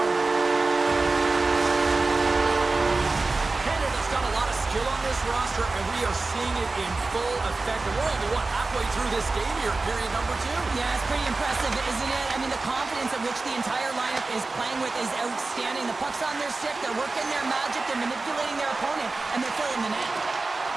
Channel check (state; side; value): quieter; left; 3.6 dB